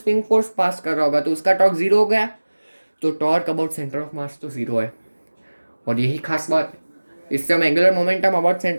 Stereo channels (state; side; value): inverted; both; correlation -1.00